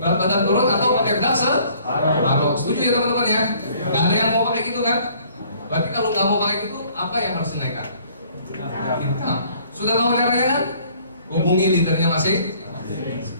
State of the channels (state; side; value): inverted; both; correlation -0.58